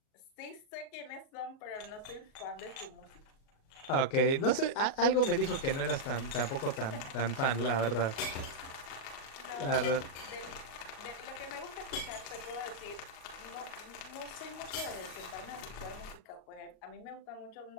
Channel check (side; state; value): right; late; 37 ms